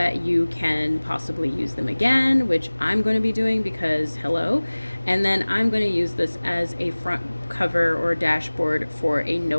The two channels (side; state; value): both; inverted; correlation -1.00